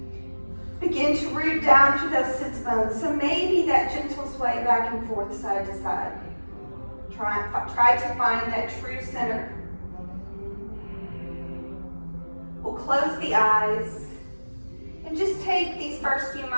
Begin to root down through those sits bones. So maybe that gentle sway back and forth, side to side. Try to find that true center. We'll close the eyes and just take these first few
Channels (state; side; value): inverted; both; correlation -1.00